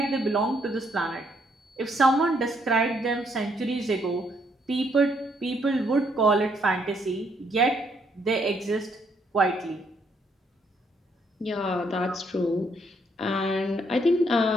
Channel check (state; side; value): normal; both; correlation 0.71